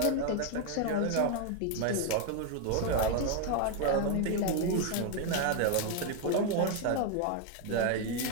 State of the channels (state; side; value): different; both; correlation 0.01